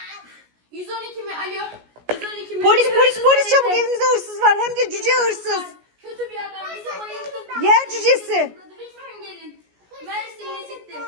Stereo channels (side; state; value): left; late; 17 ms